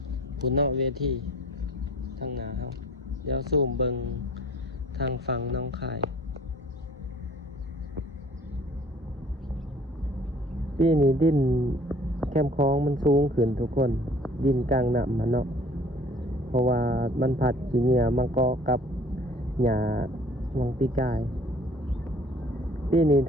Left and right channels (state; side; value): normal; both; correlation 0.52